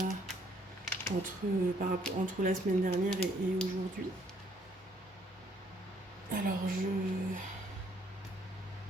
entre la semaine dernière et aujourd'hui. Alors, je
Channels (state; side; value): normal; both; correlation 0.66